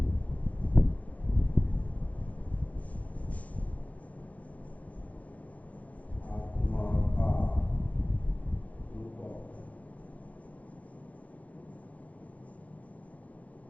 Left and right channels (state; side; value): late; right; 0.069 ms